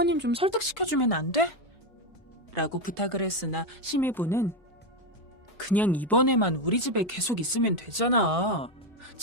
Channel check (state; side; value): normal; both; correlation 0.09